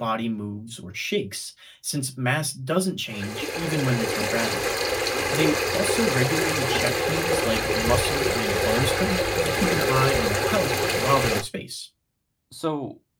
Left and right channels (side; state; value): both; identical; correlation 1.00